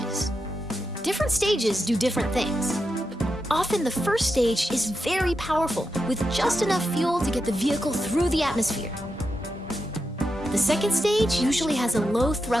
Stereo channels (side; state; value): both; normal; correlation 0.87